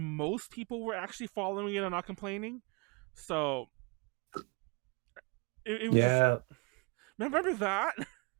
people were actually following it and not complaining. So it was. Yeah. Remember that?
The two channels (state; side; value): quieter; left; 30.4 dB